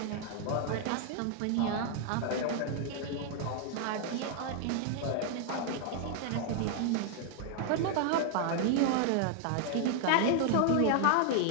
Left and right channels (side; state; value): both; different; correlation 0.00